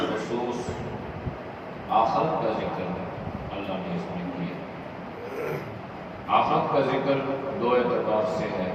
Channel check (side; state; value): both; identical; correlation 1.00